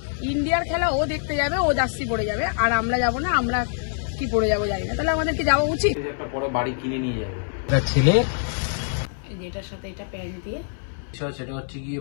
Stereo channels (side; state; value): right; silent; 60 dB below the other